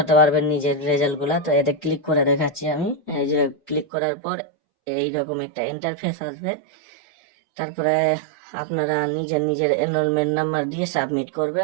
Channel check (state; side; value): drops out; left; at 3.9 s